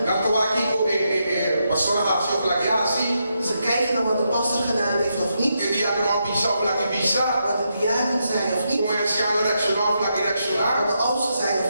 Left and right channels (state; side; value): inverted; both; correlation -0.82